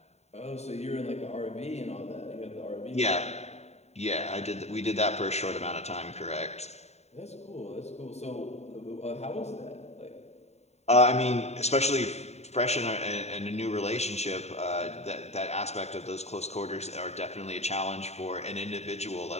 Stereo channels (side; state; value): right; late; 0.32 ms